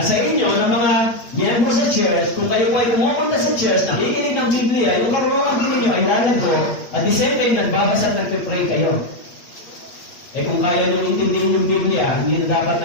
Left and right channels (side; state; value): right; late; 8.6 ms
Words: sa inyo, ng mga miyembro sa church, kung kayo po ay pumupunta sa church, nakikinig ng Biblia, yung karunungan din ninyo ay lalago, at the same time, nagbabasa at nagpipray kayo. Eh kung kaya nyo intindihin yung Biblia, hindi na dapat